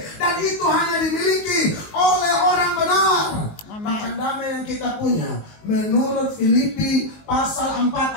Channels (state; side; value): late; right; 19 ms